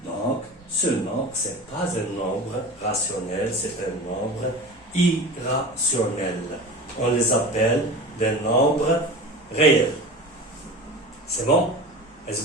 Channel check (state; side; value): normal; both; correlation 0.33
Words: Donc, ce nombre, ce n'est pas un nombre rationnel, c'est un nombre irrationnel. On les appelle des nombres réels. C'est bon? Est-ce